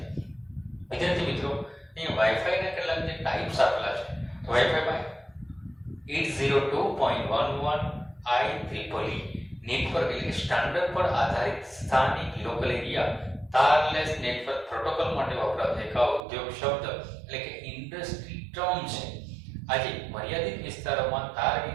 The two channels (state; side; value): drops out; left; at 16.2 s